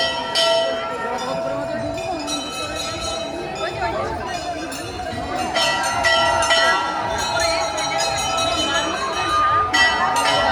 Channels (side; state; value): both; identical; correlation 1.00